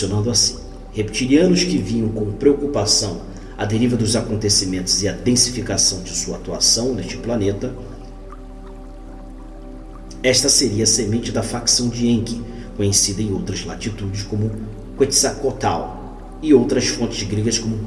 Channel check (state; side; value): identical; both; correlation 1.00